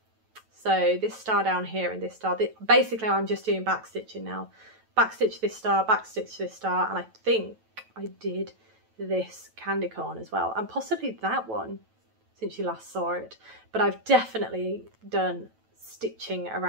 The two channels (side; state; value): left; late; 9.1 ms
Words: So this star down here and this star. Basically, I'm just doing back stitching now. Back stitch this star, back stitch this star, and I think I did this candy corn as well, and possibly that one since you last saw it. But I've definitely done stitching